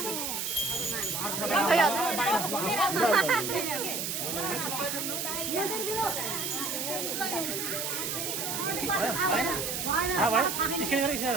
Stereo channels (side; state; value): right; noise; hiss, 2 dB below the sound